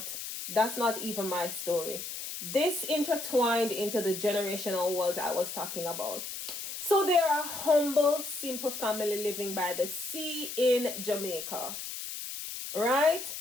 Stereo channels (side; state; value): left; noise; hiss, 7 dB below the sound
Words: that's not even my story. This intertwined into the generational wealth I was talking about. So they are a humble, simple family living by the sea in Jamaica, right?